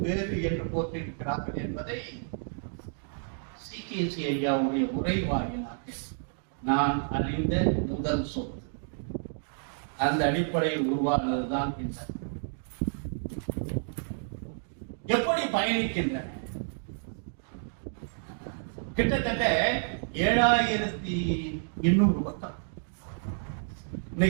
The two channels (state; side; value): silent; left; digital silence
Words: வேறு என்று போற்றிருக்கிறார்கள் என்பதை CKC ஐயாவுடைய உரை வாயிலாக நான் அறிந்த முதல் சொல். அந்த அடிப்படையில் உருவானதுதான் இந்த எப்படி பயணிக்கின்றன. கிட்டத்தட்ட 7800 பக்கம்